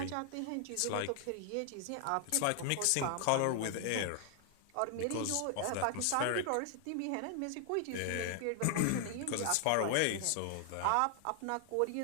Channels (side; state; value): both; different; correlation 0.00